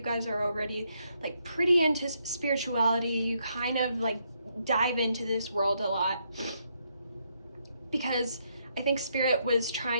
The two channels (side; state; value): both; inverted; correlation -0.76